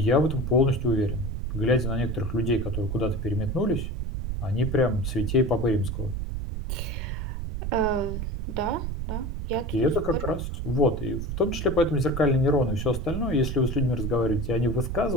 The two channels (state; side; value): noise; right; rumble, 4 dB below the sound